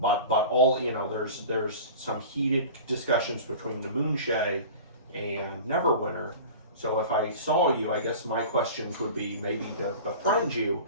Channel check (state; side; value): inverted; both; correlation -0.38